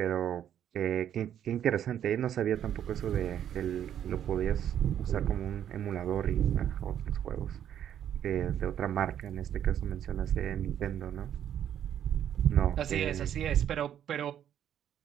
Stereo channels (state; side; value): quieter; left; 10.1 dB